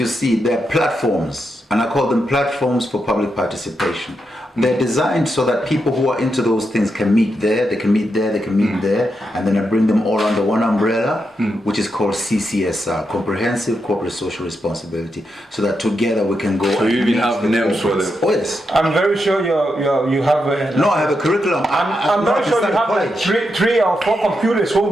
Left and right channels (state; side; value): normal; both; correlation 0.84